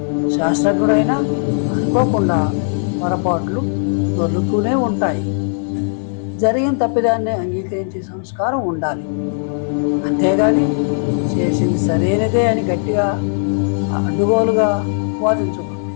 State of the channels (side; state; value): right; silent; digital silence